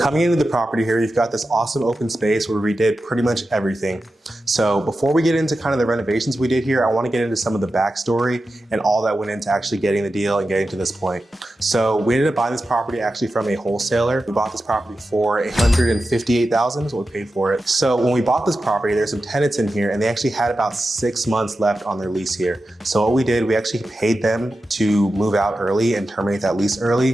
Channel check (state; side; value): normal; both; correlation 0.92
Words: into the property here, you've got this awesome open space where we did pretty much everything. So before we get into kind of the renovations we did here, I want to get into some of the backstory and all that went into actually getting the deal and getting to this point. So we ended up buying this property actually from a wholesaler. We bought this property for $158,000 is what we paid for it. So when we bought this property, there's some tenants in here and they actually had about 6 months left on their lease here. So what we did, we actually paid them to move out early and terminate that lease